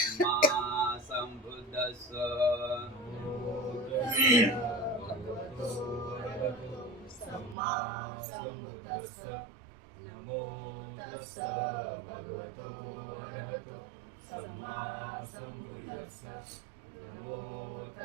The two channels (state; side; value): drops out; left; at 7.6 s